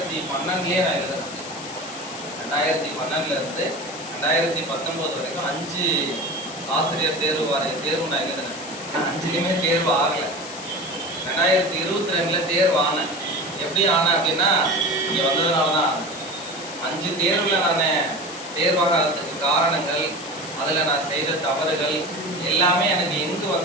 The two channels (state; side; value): noise; left; hiss, 12 dB below the sound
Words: நான் எழுதுறேன். 2012 இருந்து 2019 வரைக்கும் 5 ஆசிரியர் தேர்வு நான் எழுதுனேன். 5லையுமே தேர்வு ஆகலை. 2022 தேர்வு ஆனேன். எப்படி ஆனேன் அப்படின்னா இங்கே வந்ததுனால தான். 5 தேர்வில் நான் தேர்வாகிறதுக்கு காரணங்கள், அதில் நான் செய்த தவறுகள் எல்லாமே எனக்கு எங்கு